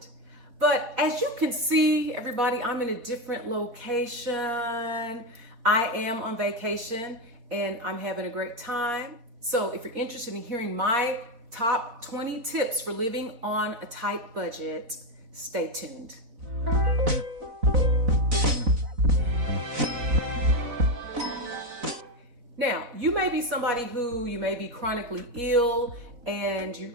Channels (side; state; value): left; late; 4.2 ms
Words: But as you can see, everybody, I'm in a different location. I am on vacation and I'm having a great time. So if you're interested in hearing my top 20 tips for living on a tight budget, stay tuned. Now, you may be somebody who you may be chronically ill and